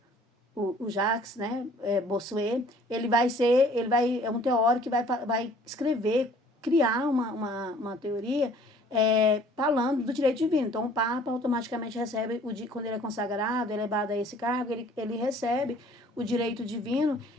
o Jacques, né, Bossuet, é um teórico que vai escrever, criar uma teoria falando do direito divino. Então, o Papa automaticamente recebe, quando ele é consagrado, elevado a esse cargo, ele recebe o direito divino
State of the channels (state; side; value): normal; both; correlation 0.54